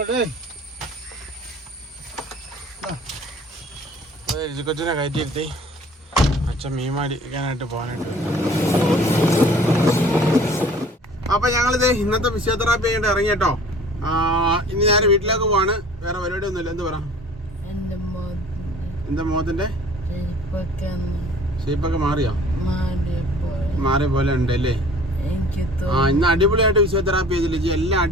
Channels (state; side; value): normal; both; correlation 0.49